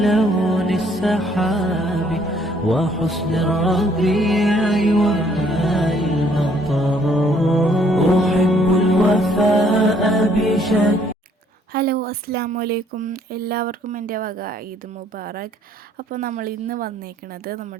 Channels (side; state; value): both; normal; correlation 0.64